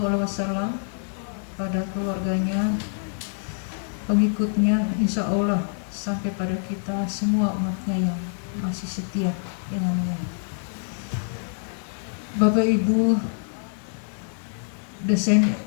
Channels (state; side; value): silent; right; digital silence